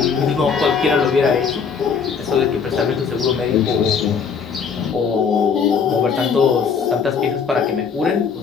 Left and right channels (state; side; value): quieter; right; 6.1 dB